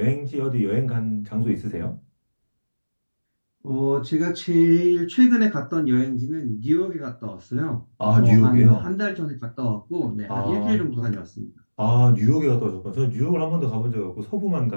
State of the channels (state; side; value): inverted; both; correlation -1.00